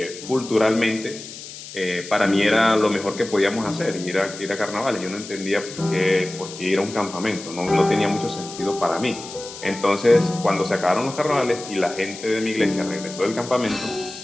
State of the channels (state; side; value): noise; left; hiss, 13 dB below the sound